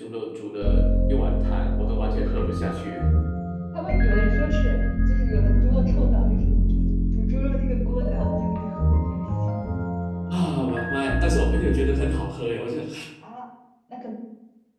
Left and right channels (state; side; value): identical; both; correlation 1.00